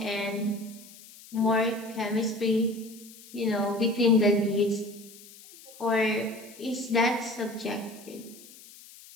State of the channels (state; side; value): noise; left; hiss, 20 dB below the sound